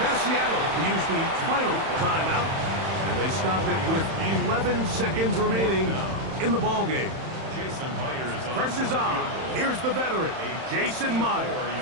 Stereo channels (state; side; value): late; left; 31 ms